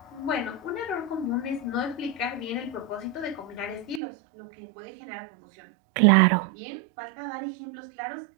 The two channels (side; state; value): left; drops out; at 4.0 s